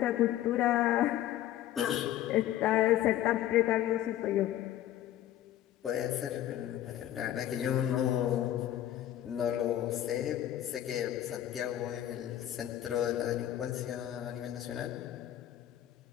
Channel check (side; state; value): right; quieter; 12.5 dB